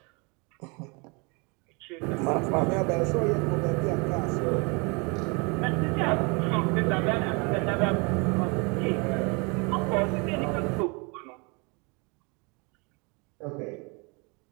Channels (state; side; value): quieter; left; 30.8 dB